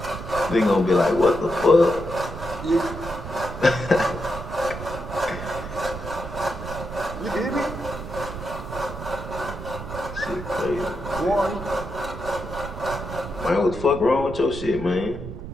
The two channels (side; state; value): right; noise; rumble, 9 dB below the sound